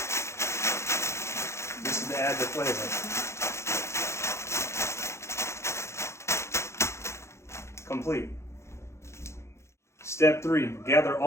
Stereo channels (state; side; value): late; right; 0.13 ms